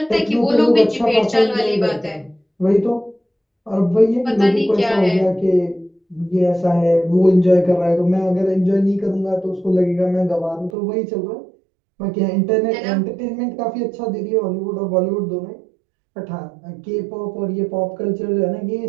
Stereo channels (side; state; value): left; drops out; at 10.7 s